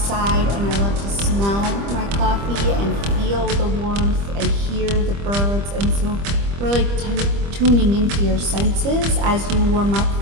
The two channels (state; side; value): late; left; 25 ms